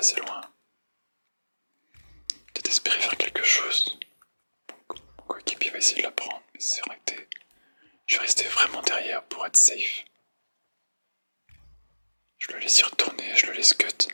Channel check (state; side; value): inverted; both; correlation -1.00